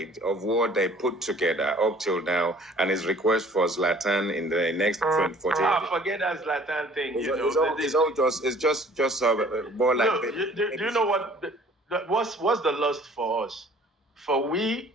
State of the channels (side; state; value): both; normal; correlation 0.53